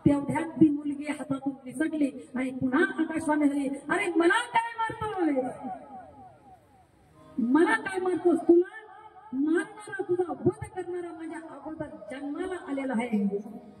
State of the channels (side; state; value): both; identical; correlation 1.00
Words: तेवढ्यात ती मुलगी हातातून निसटली आणि पुन्हा आकाशवाणी झाली, अरे मला काय मारतोस, तुला मारणारा, तुझा वध करणारा माझ्या अगोदर जन्माला आलेला आहे.